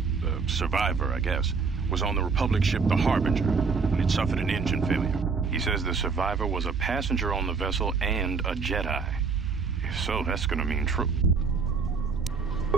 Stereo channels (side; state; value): left; quieter; 5.1 dB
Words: the survivor, I guess, was on the Republic ship the Harbinger, and it suffered an engine failure. He says the survivor was a passenger on the vessel and a Jedi. If so, that's gonna mean true.